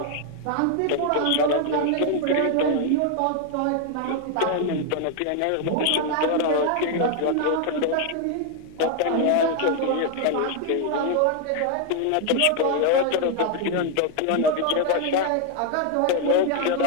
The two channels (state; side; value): different; both; correlation 0.00